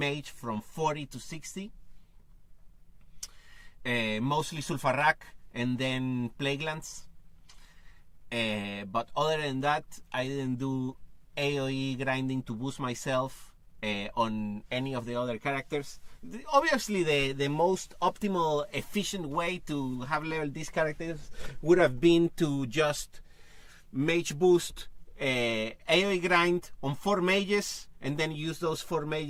from 40 to 60, mostly Sulfarak and then Plaguelands. But other than that, I didn't do AoE grinding to boost myself on any of the other characters. Obviously, the most optimal, efficient way to have leveled these characters would have been to just mage boost, AoE grind on 4 mages, and then use those 4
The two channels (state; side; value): identical; both; correlation 1.00